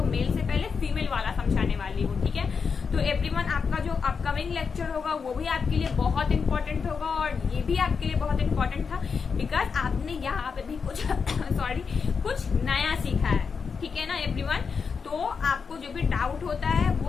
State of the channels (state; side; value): quieter; right; 5.6 dB